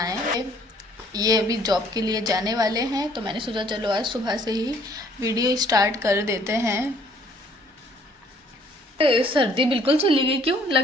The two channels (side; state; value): both; normal; correlation 0.61